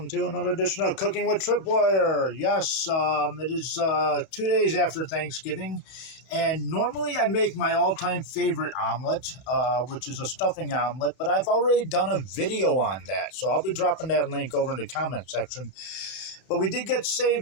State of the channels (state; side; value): late; right; 31 ms